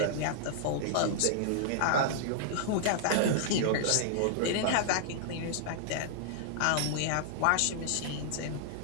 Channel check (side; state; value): both; different; correlation -0.01